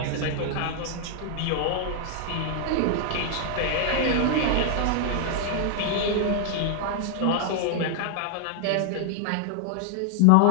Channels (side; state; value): both; different; correlation 0.00